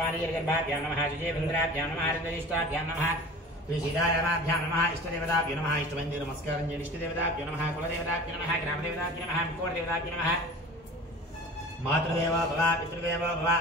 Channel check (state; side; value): normal; both; correlation 0.39